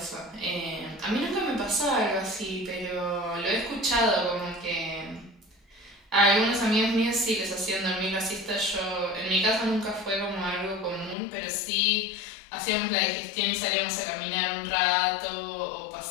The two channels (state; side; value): drops out; right; at 11.2 s